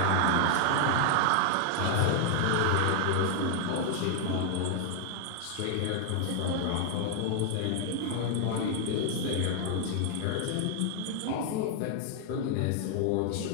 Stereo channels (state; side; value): different; both; correlation 0.00